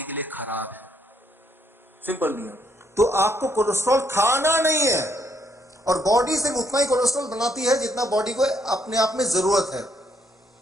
के लिए खराब है। सिंपल नियम। तो आपको कोलेस्ट्रॉल खाना नहीं है, और बॉडी सिर्फ उतना ही कोलेस्ट्रॉल बनाती है जितना बॉडी को अपने आप में जरूरत है।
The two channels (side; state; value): both; normal; correlation 0.72